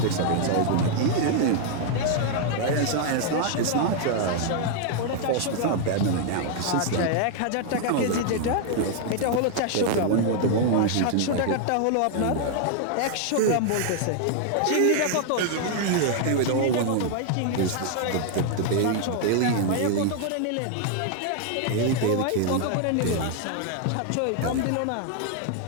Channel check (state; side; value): different; both; correlation 0.00